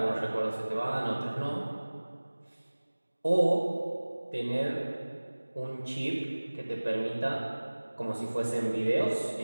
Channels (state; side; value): inverted; both; correlation -1.00